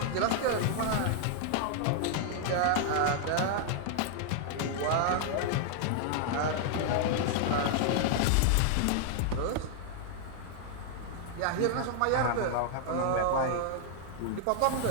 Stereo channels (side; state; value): both; different; correlation 0.00